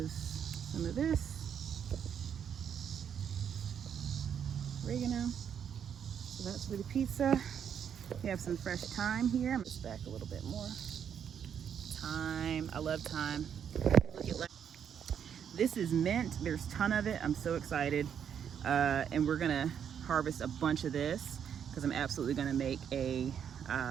some of this. Oregano. So that's for the pizza. We have some fresh thyme here. I'm gonna stack a little bit more. Thyme, I love thyme. Look at this is mint. There's a ton of it. I'm so excited. And we're gonna harvest a bunch of this because I'm absolutely gonna make a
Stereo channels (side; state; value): left; quieter; 8.2 dB